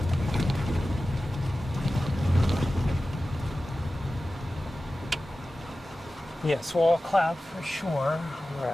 Yes, wall cloud for sure. All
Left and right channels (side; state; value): both; normal; correlation 0.95